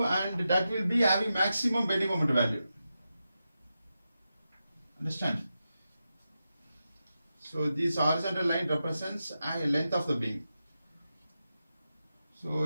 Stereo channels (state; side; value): inverted; both; correlation -0.89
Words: and that will be having maximum bending moment value. Understand? So this horizontal line represents a length of the beam. So